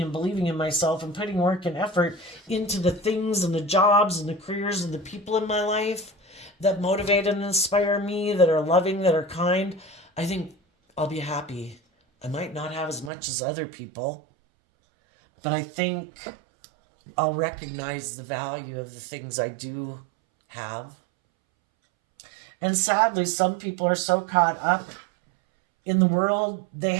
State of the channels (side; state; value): left; drops out; at 13.1 s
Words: believing in myself and putting work and effort into the things and the jobs and the careers and the people in my life that motivate and inspire me, that are loving, that are kind, I think I'll be happy. I might not have as much as other people, but I think I'll recognize the value of the things I do have. And sadly, some people are so caught up in the world, they